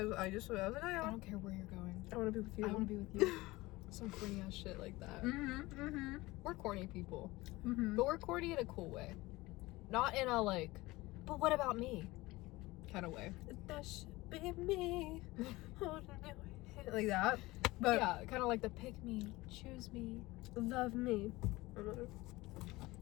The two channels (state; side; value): quieter; right; 20.3 dB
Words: was like, oh, yeah. I don't care where you're going. I want to be with you. I want to be with you. Some corny ass shit like that. We're corny people. But we're corny in a cool way. Not in a, like, but what about me kind of way. That should be me. Holding your hand. Like that. But yeah, kind of like the pick me, choose me, love me.